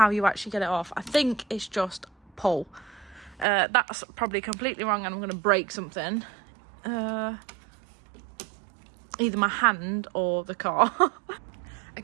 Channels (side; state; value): left; drops out; at 3.5 s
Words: you actually get it off. I think it's just pull. That's probably completely wrong and I'm going to break something. Either my hand or the car.